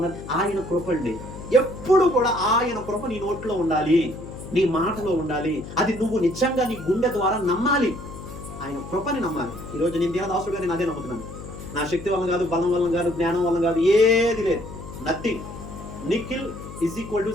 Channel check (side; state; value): left; noise; hum, 12 dB below the sound